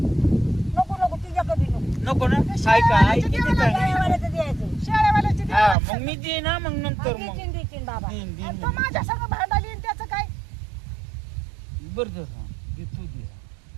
नको तुझ्याकडे नको नको ना काय का आई किती काय शेळ्यावाल्याचं द्यायचं शेळ्यावाल्याची हा देवाला मग मी देईन ना मग नंतर मग देतीन देतीन बाबा देईन आणि देईन तो माझ्या संग भांडाली आणि त्याचं काय बरं जर हा देतो दे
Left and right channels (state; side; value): drops out; left; at 5.8 s